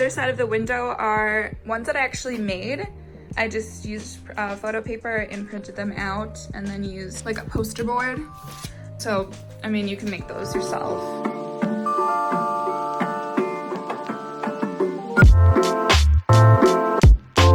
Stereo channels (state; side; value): identical; both; correlation 1.00